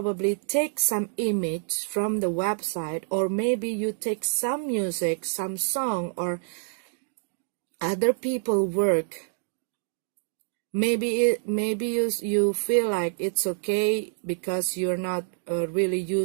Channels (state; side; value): silent; left; 60 dB below the other